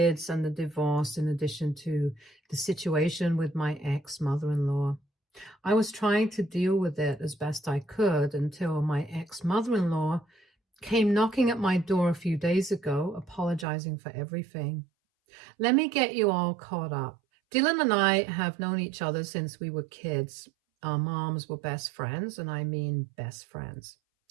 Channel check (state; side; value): drops out; left; at 13.7 s